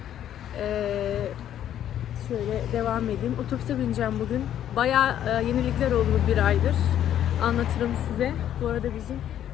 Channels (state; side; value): quieter; right; 10.8 dB